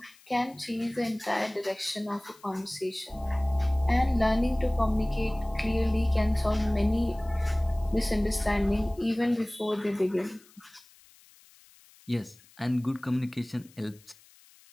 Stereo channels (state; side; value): noise; left; hiss, 27 dB below the sound